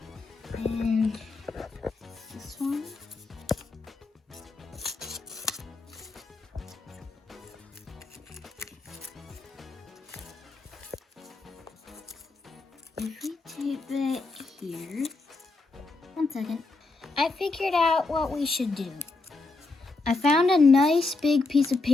And this one. If we tape it here, 1 second. I figured out what we should do. I found a nice big piece of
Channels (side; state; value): right; quieter; 3.6 dB